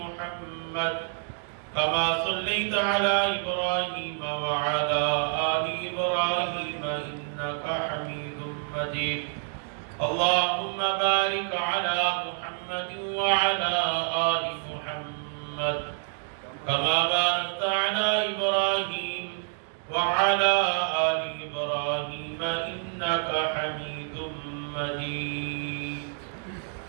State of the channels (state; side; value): silent; left; 59 dB below the other